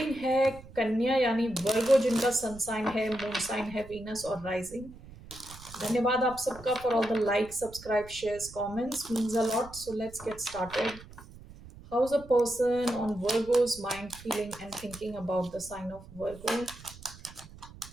है कन्या यानी वर्गो, जिनका सन साइन है, मून साइन है वीनस और राइजिंग। धन्यवाद आप सबका for all the like, subscribe, shares, comments, means a lot. So let's get started. How is a person on Virgo's mind feeling and thinking about the sign of Virgo?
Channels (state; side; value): noise; right; rumble, 18 dB below the sound